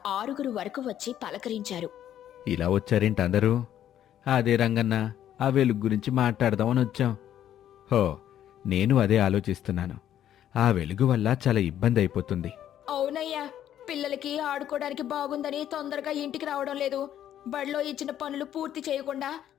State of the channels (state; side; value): quieter; right; 11.0 dB